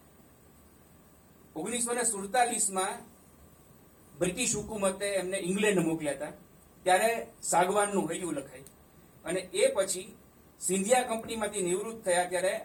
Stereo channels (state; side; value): identical; both; correlation 1.00